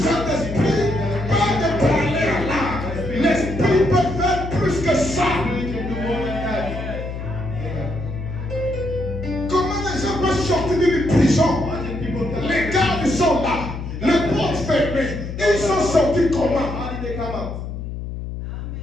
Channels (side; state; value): left; noise; hum, 7 dB below the sound